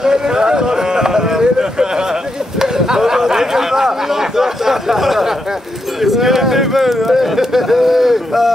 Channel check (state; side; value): normal; both; correlation 0.83